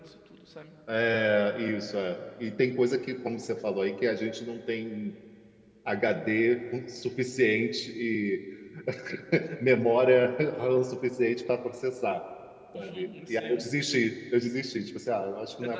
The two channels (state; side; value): identical; both; correlation 1.00